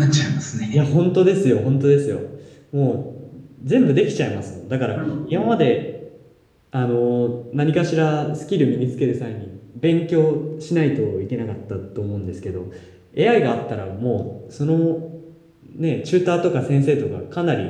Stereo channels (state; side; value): identical; both; correlation 1.00